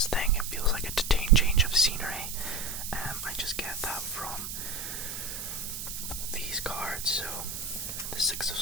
thing. It feels like a change of scenery. I just get that from these cards. So the Six of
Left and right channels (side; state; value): right; noise; hiss, 6 dB below the sound